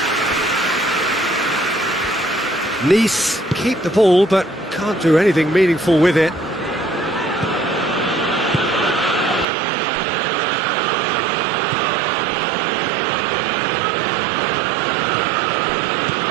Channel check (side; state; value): left; drops out; at 9.5 s